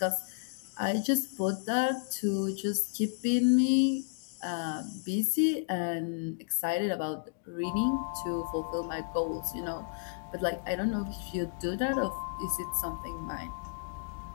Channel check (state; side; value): silent; right; digital silence